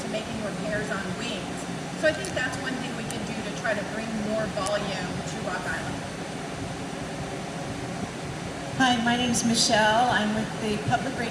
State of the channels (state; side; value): identical; both; correlation 1.00